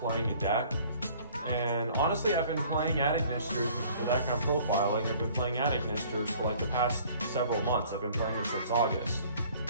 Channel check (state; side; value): inverted; both; correlation -0.53